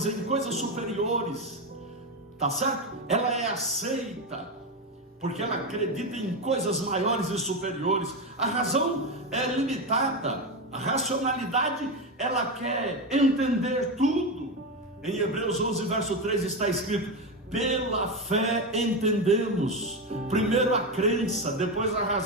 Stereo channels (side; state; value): both; normal; correlation 0.14